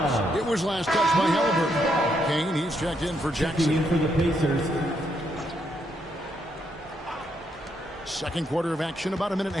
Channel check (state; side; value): normal; both; correlation 0.77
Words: It was last touched by Halliburton. Kane, he's checked in for Jackson. Checking in for the Pacers. Second quarter of action, about a minute